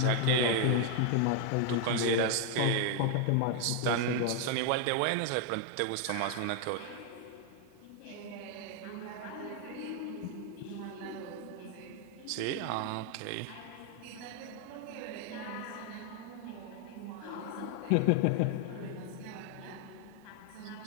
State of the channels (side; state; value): both; different; correlation 0.01